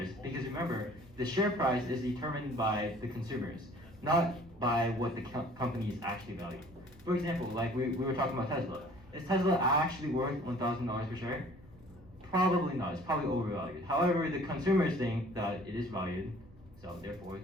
because remember, the share price is determined by the consumers, not by what the company is actually valued. For example, like we were talking about Tesla. Is Tesla actually worth $1,000 per share? Probably not. It's probably overvalued. However, the consumers think that it is valued, so therefore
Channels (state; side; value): normal; both; correlation 0.52